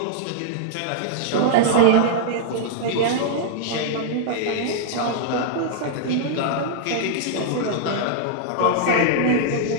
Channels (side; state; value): both; different; correlation -0.01